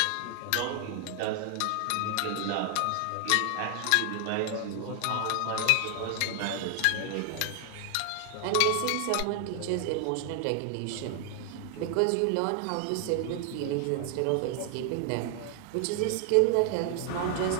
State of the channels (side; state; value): both; different; correlation 0.00